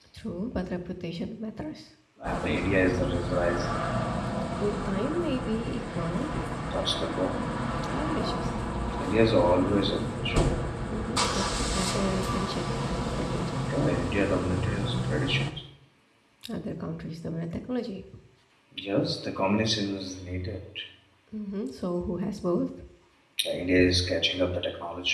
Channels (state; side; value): identical; both; correlation 1.00